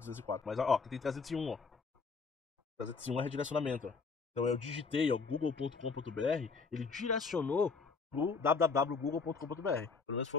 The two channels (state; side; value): quieter; right; 4.8 dB